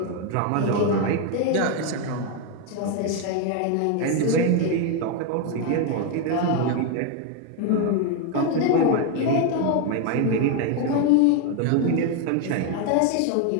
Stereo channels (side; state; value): both; different; correlation 0.01